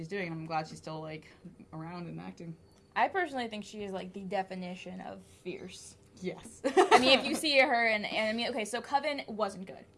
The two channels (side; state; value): both; identical; correlation 1.00